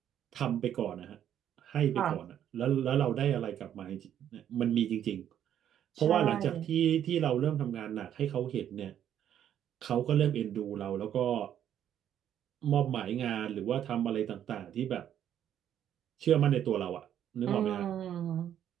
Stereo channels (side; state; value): left; quieter; 10.2 dB